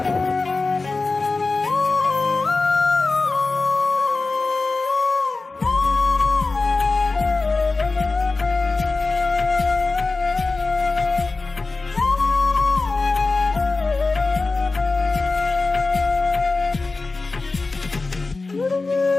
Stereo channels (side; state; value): right; quieter; 3.7 dB